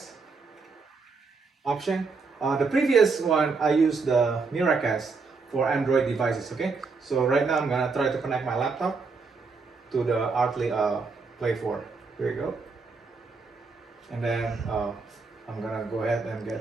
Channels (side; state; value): left; quieter; 4.5 dB